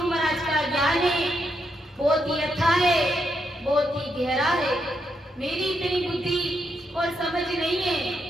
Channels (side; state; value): both; normal; correlation 0.80